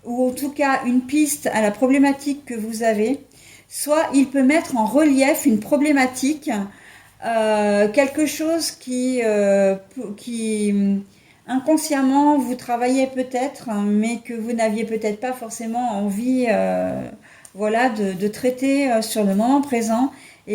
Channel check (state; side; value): identical; both; correlation 1.00